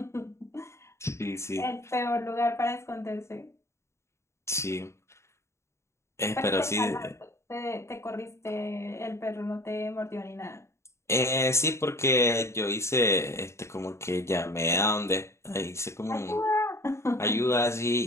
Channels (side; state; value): right; late; 0.13 ms